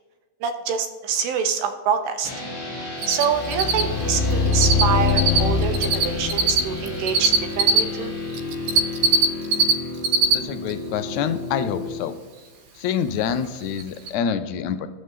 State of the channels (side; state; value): left; late; 15 ms